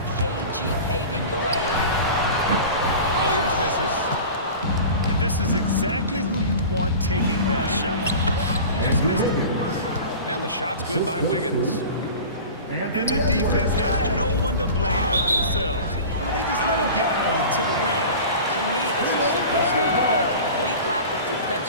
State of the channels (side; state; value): both; inverted; correlation -0.36